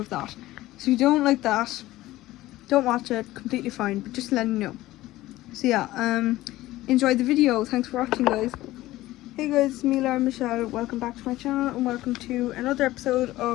that. So if you don't like that, don't watch it, completely fine, but just letting you know. So yeah, enjoy the video. Thanks for watching, guys. Hey guys, it's me, Laura Michelle. Welcome back to my channel and welcome to another episode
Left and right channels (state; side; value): quieter; right; 16.7 dB